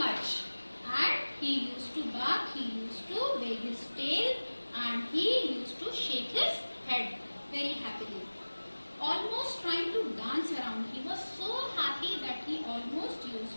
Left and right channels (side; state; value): both; inverted; correlation -1.00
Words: and he used to bark, he used to wag his tail, and he used to shake his head very happily, almost trying to dance around. He was so happy that he almost